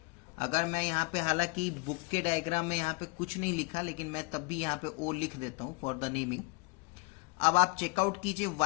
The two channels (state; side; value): quieter; right; 27.7 dB